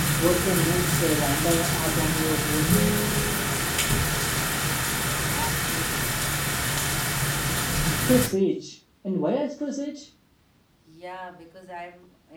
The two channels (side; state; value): both; identical; correlation 1.00